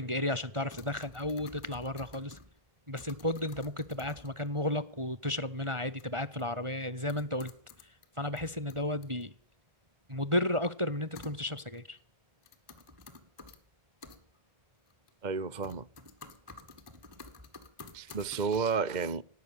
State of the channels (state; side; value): late; left; 1.4 ms